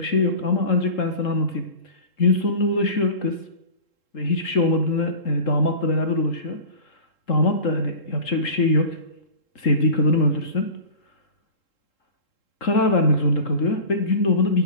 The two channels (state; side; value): late; right; 3.7 ms